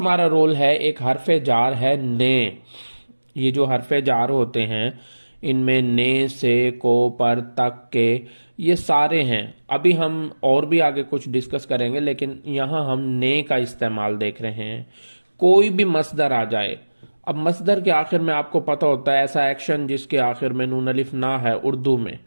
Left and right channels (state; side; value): inverted; both; correlation -1.00